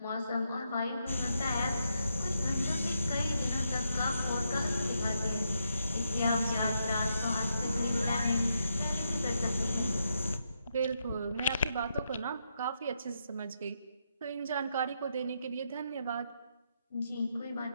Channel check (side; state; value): both; inverted; correlation -0.81